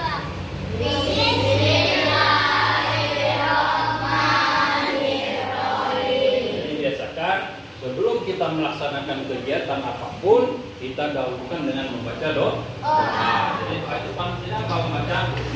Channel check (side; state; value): both; identical; correlation 1.00